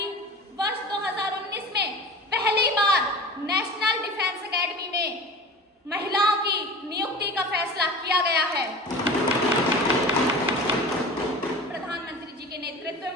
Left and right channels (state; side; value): normal; both; correlation 0.36